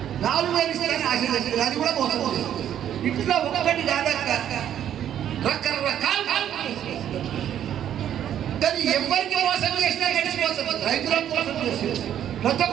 4000 ఇస్తే ఆశ, అది కూడా మోసం. ఇట్లా ఒక్కటి కాదక్క రకరకాల కానీ ఎవరికి మోసం చేసినా గడిచిపోతుంది. రైతులకు మోసం చేసేది, ప్రతి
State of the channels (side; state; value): left; quieter; 10.4 dB